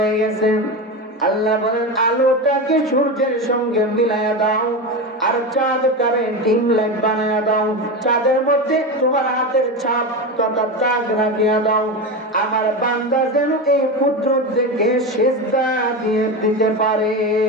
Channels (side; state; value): both; normal; correlation 0.20